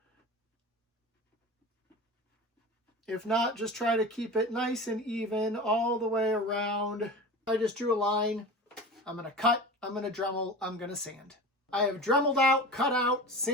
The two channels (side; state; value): both; normal; correlation 0.32